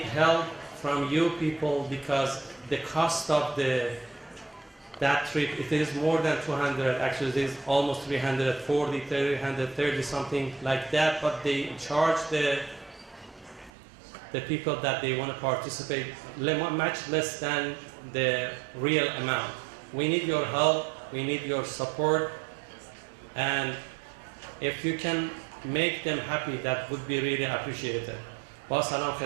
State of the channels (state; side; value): drops out; left; at 13.7 s